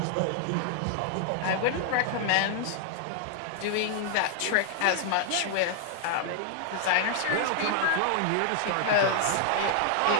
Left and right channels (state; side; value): different; both; correlation 0.00